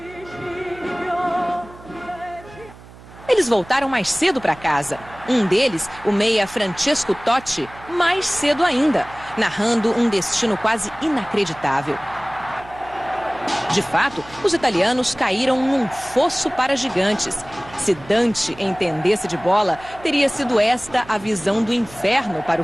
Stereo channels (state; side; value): noise; right; hum, 20 dB below the sound